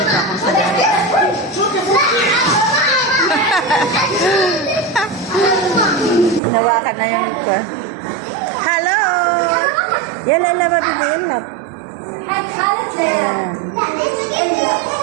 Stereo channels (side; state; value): left; drops out; at 6.4 s